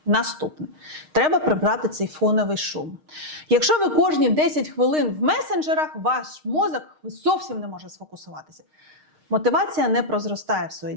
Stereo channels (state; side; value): late; left; 6.5 ms